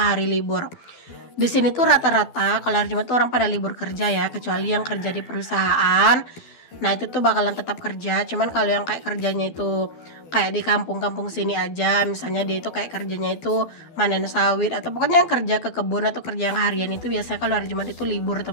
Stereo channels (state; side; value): late; right; 12 ms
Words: hari libur. Di sini tuh rata-rata kalau hari Jumat tuh orang pada libur kerja ya, kecuali yang kerja di perusahaan. Nah, itu tuh bakalan tetap kerja. Cuman kalau yang kayak kerjanya itu kayak di kampung-kampung sini aja, misalnya dia itu kayak kerjanya itu manen sawit atau pokoknya yang kerja ke kebun atau kerja yang harian itu biasanya kalau hari Jumat itu libur